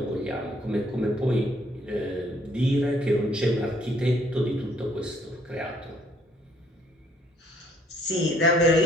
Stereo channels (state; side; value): normal; both; correlation 0.64